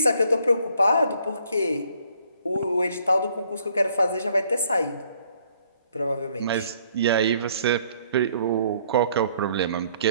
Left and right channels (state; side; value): inverted; both; correlation -0.64